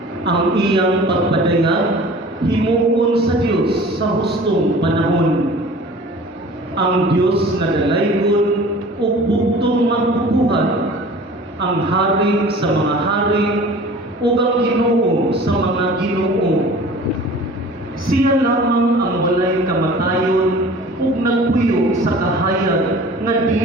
Ang iyang pagpadayag himuon sa Dios sa hustong panahon. Ang Dios nga dalaygon ug bugtong magbubuhat, ang hari sa mga hari ug ang Ginoo sa mga Ginoo. Siya lamang ang walay kamatayon ug nagpuyo sa kahayag nga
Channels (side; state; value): both; normal; correlation 0.44